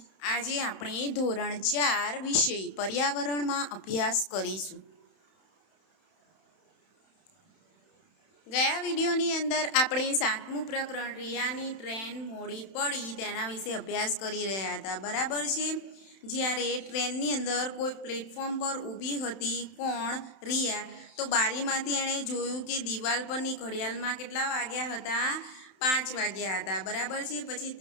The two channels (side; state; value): right; late; 31 ms